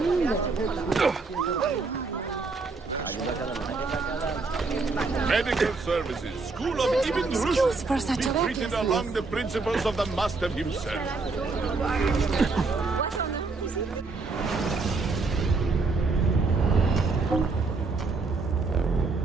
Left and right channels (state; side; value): quieter; left; 4.0 dB